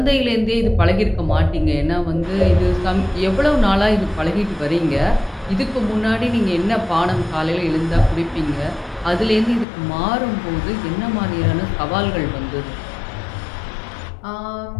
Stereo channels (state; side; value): drops out; right; at 9.7 s